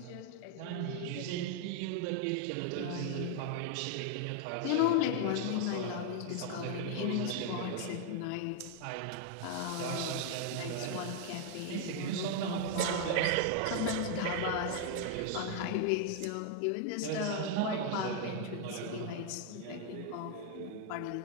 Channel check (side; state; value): both; different; correlation 0.00